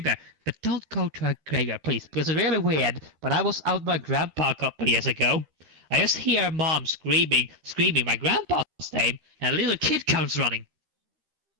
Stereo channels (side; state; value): left; late; 13 ms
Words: bad. But don't go to a graveyard, please, because it's really weird. When I was out with my grandpa a couple years ago, I just hear mom screaming my grandpa's name, and a little kid comes running.